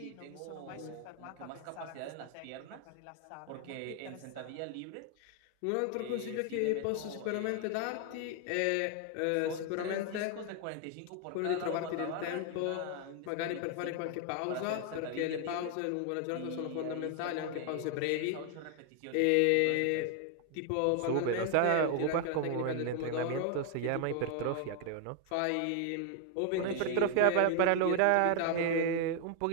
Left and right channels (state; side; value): different; both; correlation 0.00